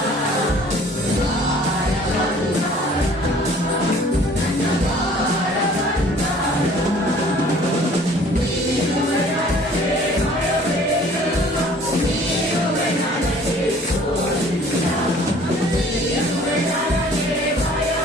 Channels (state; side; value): normal; both; correlation 0.52